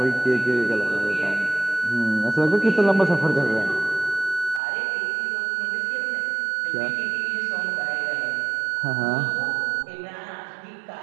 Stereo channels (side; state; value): left; drops out; at 4.6 s